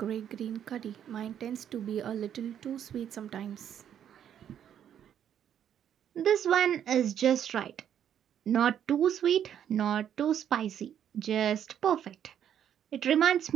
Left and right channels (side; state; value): left; quieter; 9.5 dB